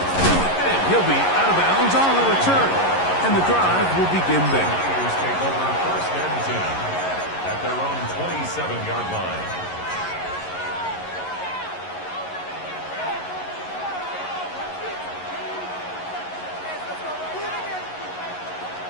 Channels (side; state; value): right; late; 11 ms